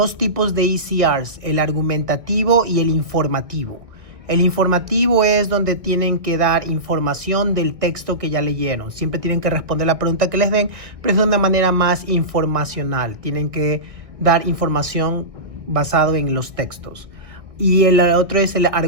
tipos de ECRs, el argumentativo y el informativo. El informativo es donde tienen que dar información del texto que ya leyeron. Siempre tienen que responder la pregunta que les den, pero es de una manera más informacional. Tienen que dar información basado en los textos. Y el otro es el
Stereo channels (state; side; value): late; left; 1.6 ms